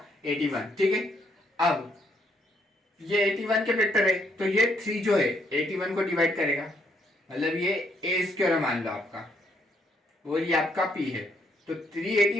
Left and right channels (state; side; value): normal; both; correlation 0.71